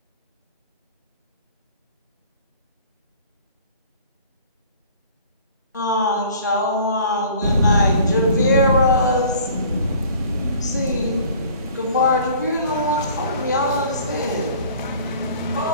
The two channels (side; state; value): both; inverted; correlation -0.50